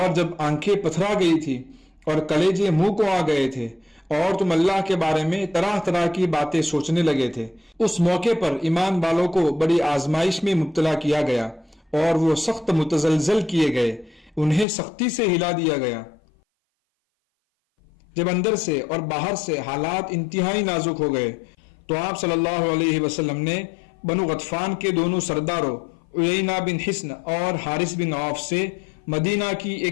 جب آنکھیں پتھرا گئی تھی اور کلیجے منہ کو آ گئے تھے اور تم اللہ کے بارے میں طرح طرح کی باتیں سوچنے لگے تھے۔ اس موقع پر ایمان والوں کو بڑی آزمائش میں مبتلا کیا گیا اور وہ سخت متزلزل کیے گئے، انہیں سختی سے ہلا دیا گیا۔ جب اندر سے اور باہر سے حالات انتہائی نازک ہو گئے تو آپ صلی اللہ علیہ وسلم نے بنو غطفان کے دونوں سرداروں عیینہ بن حصن اور حارث بن عوف سے مدینہ کی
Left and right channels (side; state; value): right; drops out; at 14.7 s